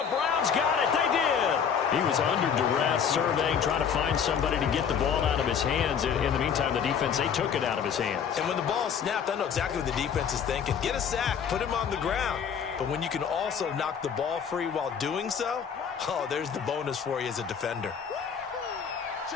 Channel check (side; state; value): right; quieter; 7.3 dB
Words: Browns got it. They did. He was under duress, surveying, trying to find somebody to get the ball out of his hands. In the meantime, the defense, they took it out of his hands. And when the ball snapped, I know exactly what the defense is thinking. Get a sack. Put him on the ground. But when you can also knock the ball free while doing so, oh, there's the bonus for you as a defender.